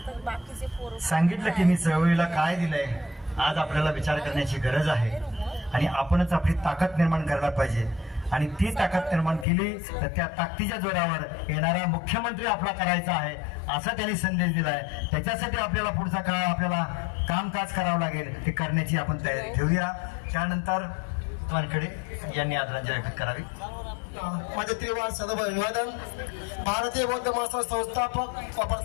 सांगितलं की मी चळवळीला काय दिलंय. आज आपल्याला विचार करण्याची गरज आहे आणि आपणच आपली ताकद निर्माण करायला पाहिजे. आणि ती ताकद निर्माण केली तर त्या ताकदीच्या जोरावर येणारा मुख्यमंत्री आपला करायचा आहे असा त्यांनी संदेश दिलाय. त्याच्यासाठी आपल्याला पुढचा काळ आपल्याला कामकाज करावं लागेल, ते करण्याची आपण तयारी ठेवूया. त्यानंतर वानखेडे यांनी आदरांजली अर्पित करावी. माझे त्रिवार सदैव अभिवादन. भारतीय बौद्ध महासभा संस्थापक व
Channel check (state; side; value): drops out; right; at 9.5 s